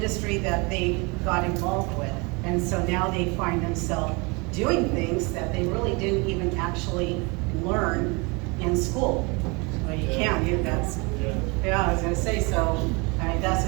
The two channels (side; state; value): left; quieter; 28.6 dB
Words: that they got involved with. And so now they find themselves doing things that they really didn't even actually learn in school. Well, you can, that's, yeah, I was gonna say, so, I mean, that's,